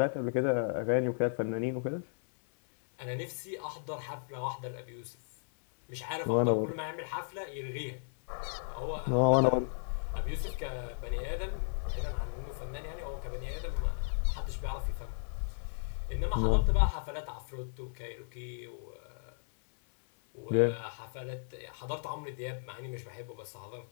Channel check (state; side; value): silent; right; 55 dB below the other